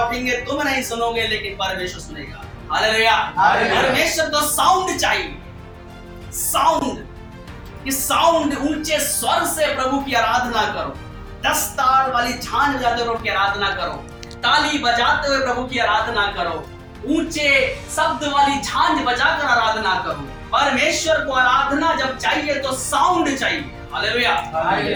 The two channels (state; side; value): identical; both; correlation 1.00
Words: तुम नहीं सुनोगे लेकिन परमेश्वर सुनेगा। हालेलुया। परमेश्वर को साउंड चाहिए, साउंड, कि साउंड ऊंचे स्वर से प्रभु की आराधना करो, 10 तार वाली झांझ बजाते हुए प्रभु की आराधना करो, ताली बजाते हुए प्रभु की आराधना करो, ऊंचे शब्द वाली झांझ बजाकर आराधना करो। परमेश्वर को आराधना जब चाहिए तो साउंड चाहिए। हालेलुया।